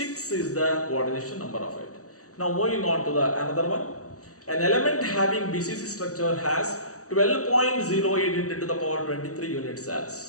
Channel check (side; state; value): right; late; 0.66 ms